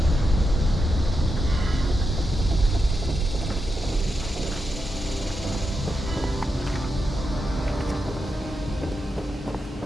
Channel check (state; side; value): normal; both; correlation 0.86